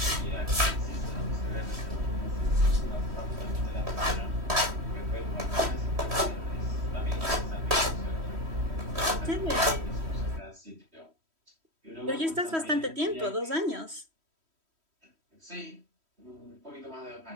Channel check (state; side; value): late; left; 3.1 ms